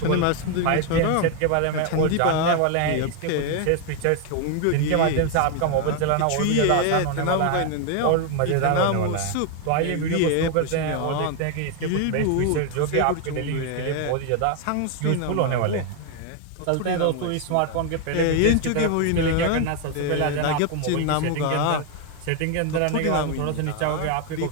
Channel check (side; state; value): both; different; correlation 0.01